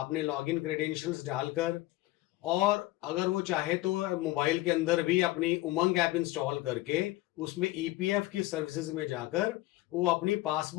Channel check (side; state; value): right; quieter; 18.3 dB